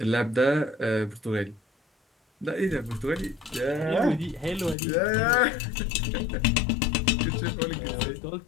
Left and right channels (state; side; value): drops out; right; at 4.8 s